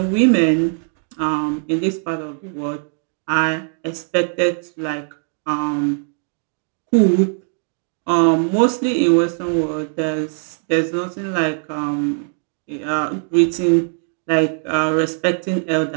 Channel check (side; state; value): left; silent; 57 dB below the other